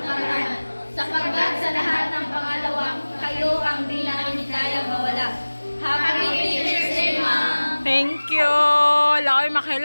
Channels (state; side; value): inverted; both; correlation -1.00